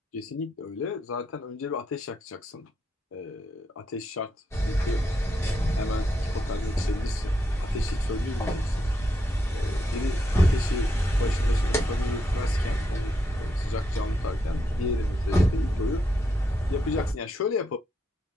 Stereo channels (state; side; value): normal; both; correlation 0.81